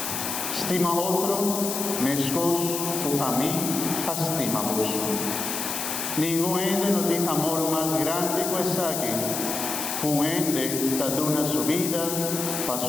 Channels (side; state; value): left; noise; hiss, 3 dB below the sound